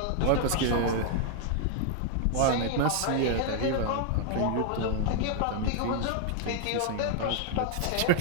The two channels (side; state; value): both; different; correlation 0.00